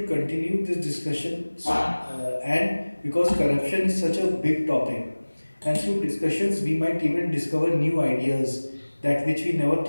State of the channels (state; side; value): inverted; both; correlation -1.00